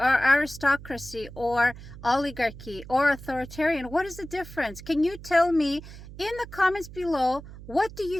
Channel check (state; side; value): noise; right; hum, 15 dB below the sound